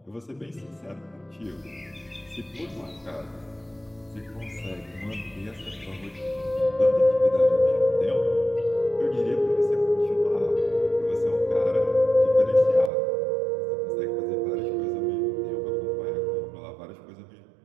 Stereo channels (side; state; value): left; drops out; at 12.9 s